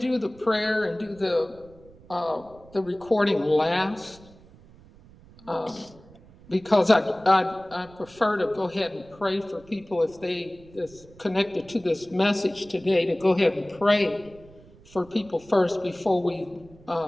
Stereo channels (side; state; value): right; noise; rumble, 24 dB below the sound